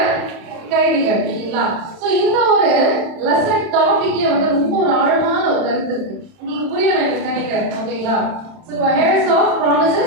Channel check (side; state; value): left; late; 31 ms